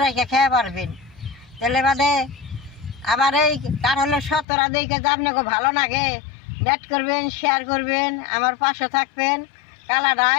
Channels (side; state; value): right; drops out; at 4.5 s